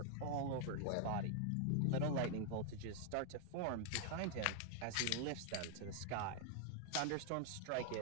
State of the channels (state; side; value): different; both; correlation 0.00